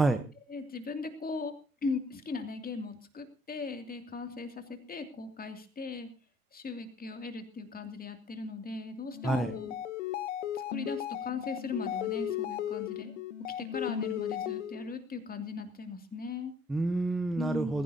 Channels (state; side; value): normal; both; correlation 0.59